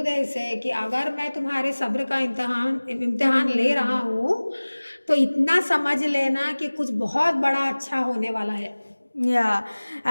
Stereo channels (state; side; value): inverted; both; correlation -1.00